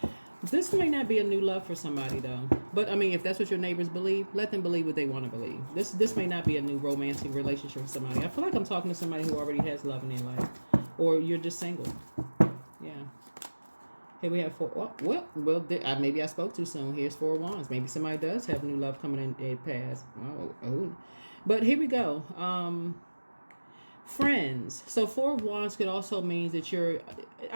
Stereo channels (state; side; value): inverted; both; correlation -1.00